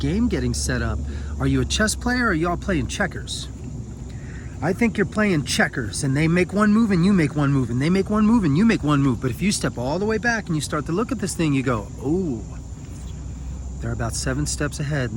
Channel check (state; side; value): identical; both; correlation 1.00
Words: getting set up. Are you a chess player, or are y'all playing checkers? I think you're playing checkers, and they make one move and you make one move, and they make one move and you make one move. But if you step all the way back and you start to look at this thing, you go, oh, They're about 7 steps ahead,